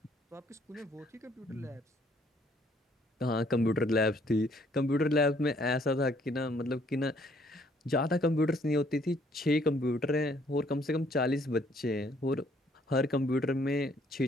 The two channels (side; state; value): both; normal; correlation 0.64